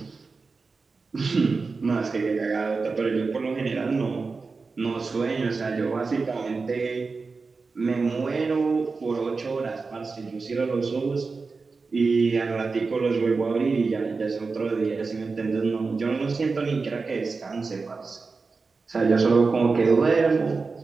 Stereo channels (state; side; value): quieter; left; 4.3 dB